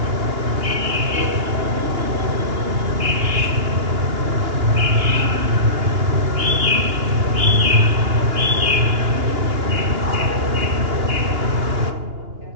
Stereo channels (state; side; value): late; left; 2.9 ms